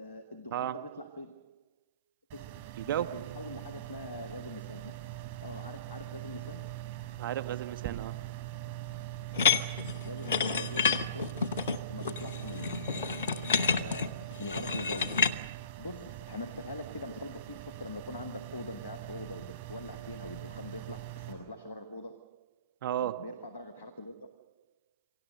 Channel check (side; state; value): both; inverted; correlation -0.45